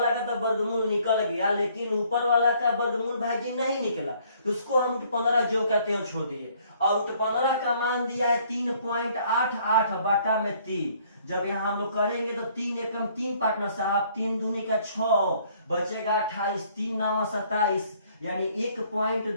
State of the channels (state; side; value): inverted; both; correlation -0.62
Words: का तो वर्गमूल निकल गया, लेकिन ऊपर वाला का वर्गमूल भाई जी नहीं निकला, तो उसको हम √15 जो कहते हैं छोड़ दिए। और √15 का मान दिया है 3.88/3। जब यहाँ हम लोग करेंगे तो 3 एकम 3 पार्टनर साहब, 3 दूनी का 6 बचेगा 28, 3 9 27, यानी